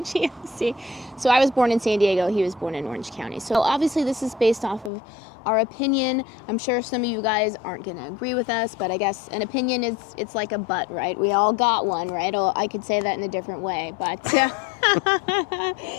OC. So I was born in San Diego. He was born in Orange County. So obviously this is based off of our opinion. I'm sure some of you guys aren't going to agree with us, but I guess an opinion is, it's like a butt, right? We all got one, right? I could say that in a different way, but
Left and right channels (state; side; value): drops out; right; at 4.9 s